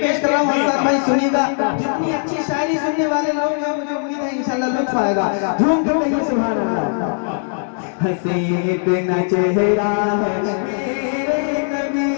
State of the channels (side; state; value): right; silent; 60 dB below the other